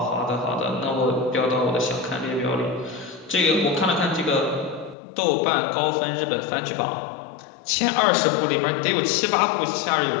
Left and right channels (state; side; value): drops out; right; at 5.0 s